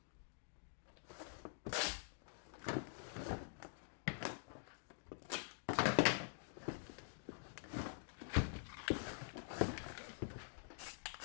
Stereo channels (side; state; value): right; silent; digital silence